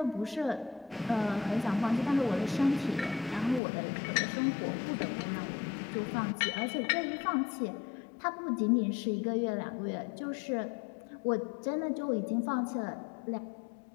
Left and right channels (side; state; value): right; drops out; at 3.6 s